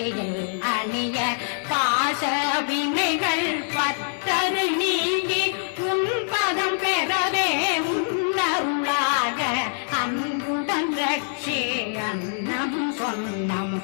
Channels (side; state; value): right; silent; digital silence